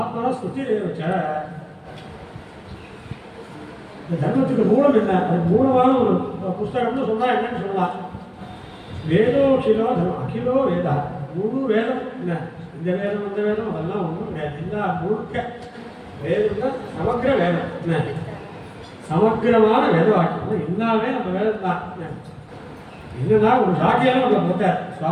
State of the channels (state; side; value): identical; both; correlation 1.00